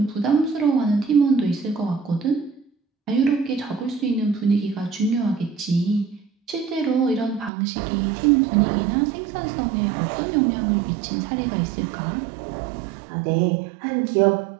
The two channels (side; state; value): left; drops out; at 7.5 s